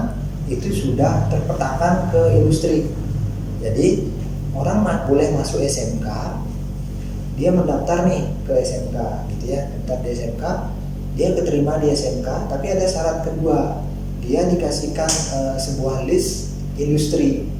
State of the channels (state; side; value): identical; both; correlation 1.00